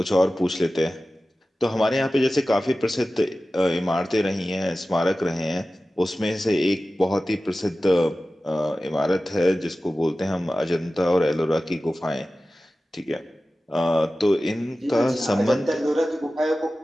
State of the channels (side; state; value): both; normal; correlation 0.95